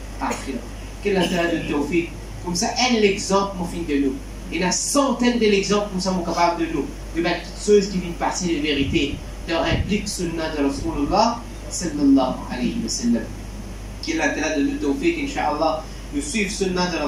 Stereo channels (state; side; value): identical; both; correlation 1.00